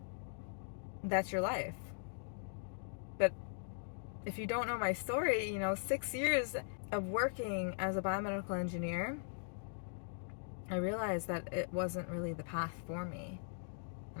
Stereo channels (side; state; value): right; silent; digital silence